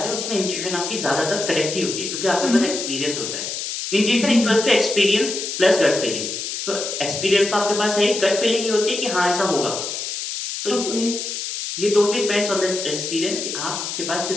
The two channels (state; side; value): noise; left; hiss, 5 dB below the sound